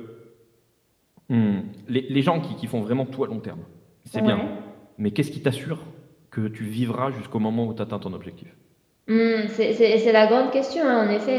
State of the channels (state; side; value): identical; both; correlation 1.00